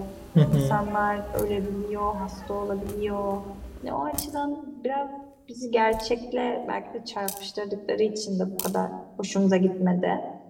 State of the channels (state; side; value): identical; both; correlation 1.00